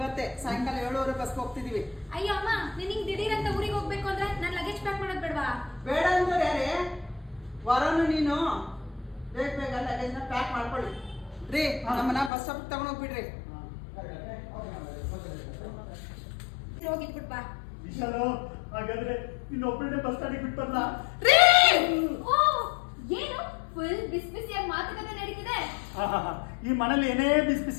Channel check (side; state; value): right; drops out; at 12.3 s